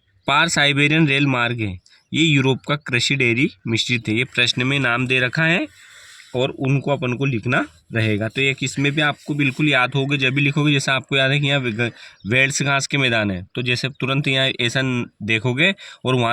पार साइबेरियन रेल मार्ग है, ये यूरोप का कृषि डेयरी मिश्रित है। ये प्रश्न में नाम दे रखा है और उनको अपन को लिखना रहेगा। तो एक इसमें भी आपको बिल्कुल याद होगा जब भी लिखोगे, जैसे आपको याद है कि यहाँ वेल्स घास के मैदान है, तो जैसे तुरंत यहाँ ऐसा देखोगे और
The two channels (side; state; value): both; identical; correlation 1.00